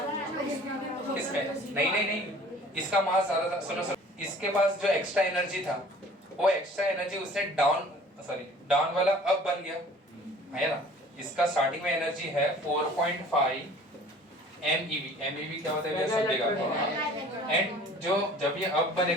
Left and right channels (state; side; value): normal; both; correlation 0.48